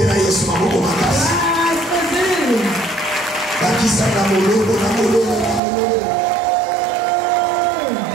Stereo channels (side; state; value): left; drops out; at 5.6 s